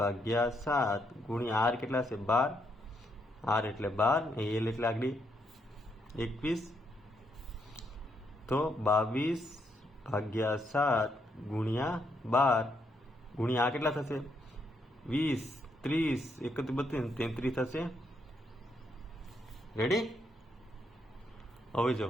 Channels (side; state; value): both; normal; correlation 0.77